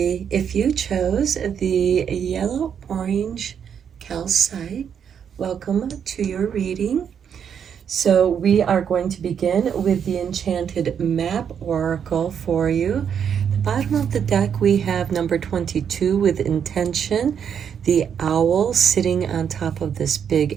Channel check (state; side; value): quieter; left; 7.9 dB